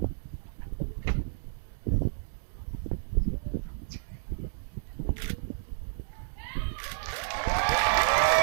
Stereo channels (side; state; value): left; silent; digital silence